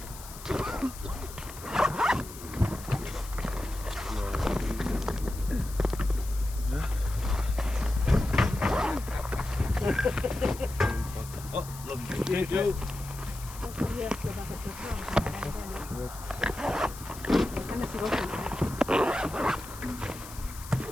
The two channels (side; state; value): left; noise; hiss, 15 dB below the sound